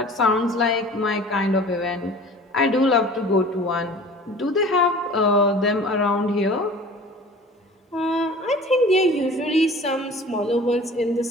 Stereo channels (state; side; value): normal; both; correlation 0.44